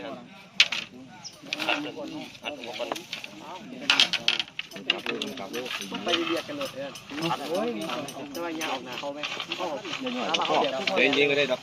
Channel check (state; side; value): identical; both; correlation 1.00